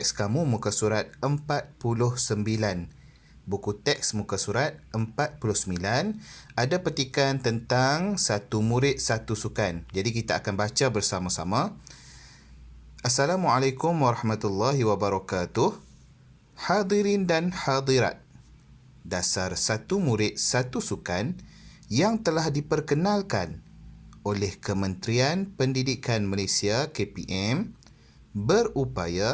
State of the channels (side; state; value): both; identical; correlation 1.00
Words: kamu muka surat 49. Buku teks muka surat 49 ada petikan tentang satu murid satu sukan. Jadi kita akan baca bersama-sama. Assalamualaikum warahmatullahi wabarakatuh. Hadirin dan hadirat. Dasar satu murid satu sukan yang telah diperkenalkan oleh Kementerian Pendidikan Malaysia KPM